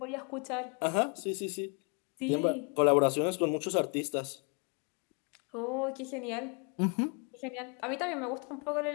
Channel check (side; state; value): right; quieter; 37.3 dB